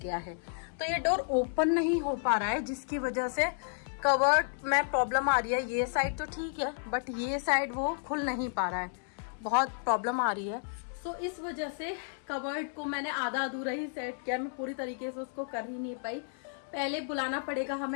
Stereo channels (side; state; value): right; silent; 56 dB below the other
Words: गया है। तो ये डोर ओपन नहीं हो पा रहा है, जिसकी वजह से कवर्ड में प्रॉब्लम आ रही है। ये साइड तो ठीक है, बट ये साइड वो खुल नहीं पा रहा है, बहुत प्रॉब्लम आ रही है। सो इस वजह से कवर्ड को मैंने आधा अधूरा ही सेट किया, मैं पूरी तरीके से उसको कर ही नहीं पाई। पहले बुलाना पड़ेगा